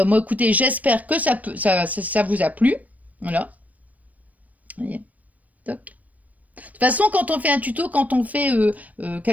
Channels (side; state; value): left; late; 0.073 ms